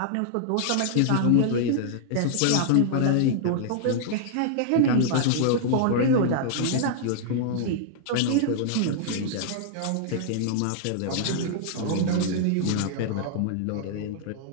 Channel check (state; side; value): different; both; correlation -0.01